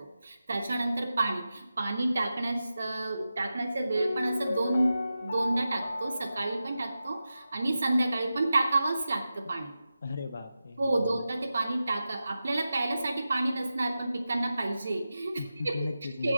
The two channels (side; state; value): both; inverted; correlation -0.92